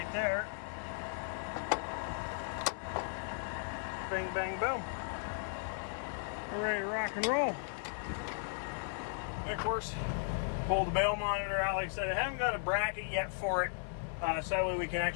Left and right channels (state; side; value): silent; right; 54 dB below the other